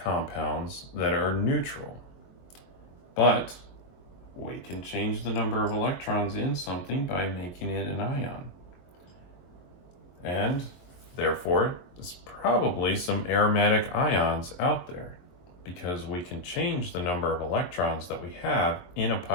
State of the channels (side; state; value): right; late; 22 ms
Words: compounds that are neutral, but we can change the number of electrons in something by making it an ion. And therefore, there's probably some aromatic ions out there because we can change the number of electrons that we have in a